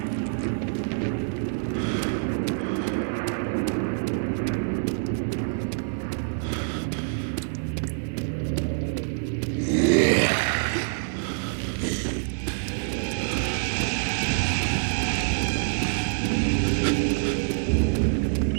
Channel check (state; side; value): silent; left; 61 dB below the other